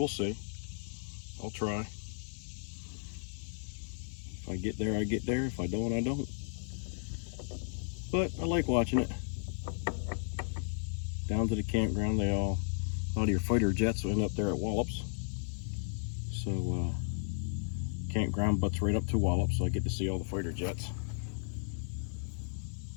see. I'll try. If I get there, I get there. If I don't, I don't. But I like watching it. Down to the campground, a lot of your fighter jets will end up there at Wallops. So campground butts right up to Wallops, so I get to see all the fighter jets.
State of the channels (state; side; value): silent; right; digital silence